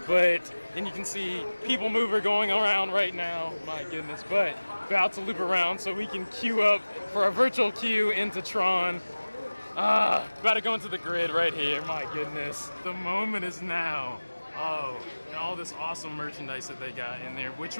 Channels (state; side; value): inverted; both; correlation -1.00